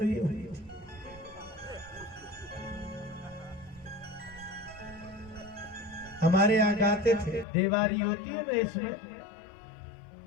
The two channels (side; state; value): right; drops out; at 7.5 s